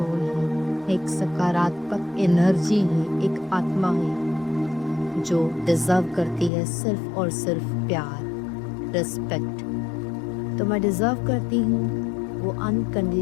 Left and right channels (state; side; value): drops out; right; at 6.5 s